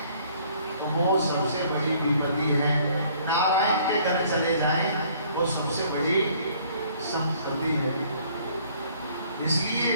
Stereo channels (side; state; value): both; inverted; correlation -0.59